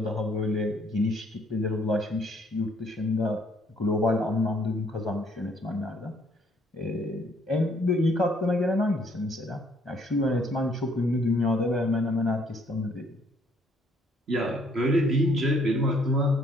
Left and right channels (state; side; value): normal; both; correlation 0.65